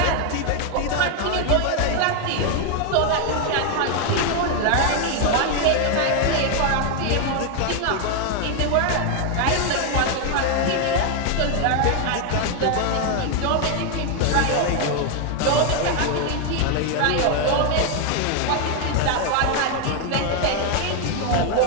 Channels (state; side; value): different; both; correlation 0.01